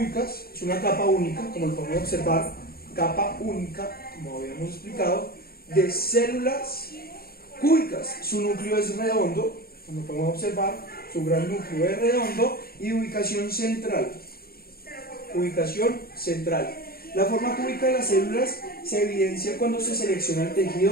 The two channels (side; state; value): right; late; 0.44 ms